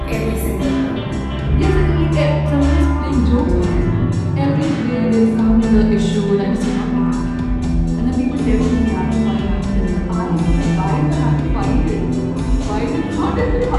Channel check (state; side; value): identical; both; correlation 1.00